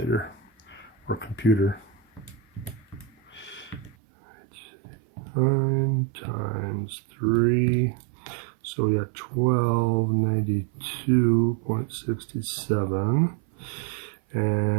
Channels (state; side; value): drops out; left; at 4.0 s